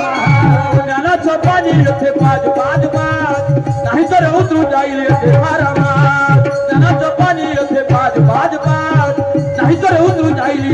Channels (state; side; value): identical; both; correlation 1.00